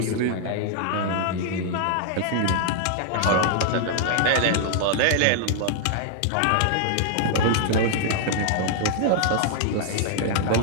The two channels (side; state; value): both; different; correlation 0.00